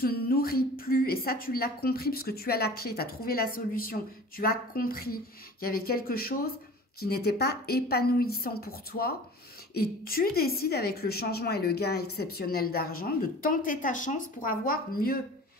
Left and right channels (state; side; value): normal; both; correlation 0.42